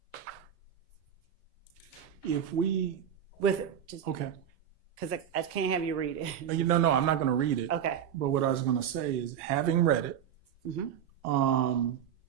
If we, With just okay. because I can't have you read it. No, I'm not going to read it. Okay. But what I was going to say is, having read it, Mhm.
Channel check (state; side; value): quieter; left; 9.3 dB